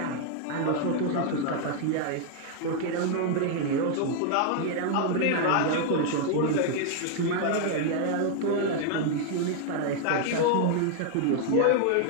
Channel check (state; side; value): different; both; correlation 0.00